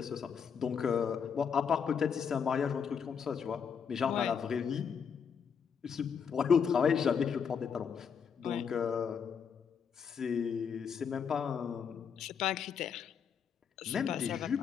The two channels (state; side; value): quieter; right; 6.9 dB